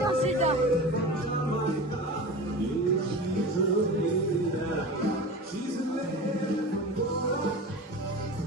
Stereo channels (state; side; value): normal; both; correlation 0.32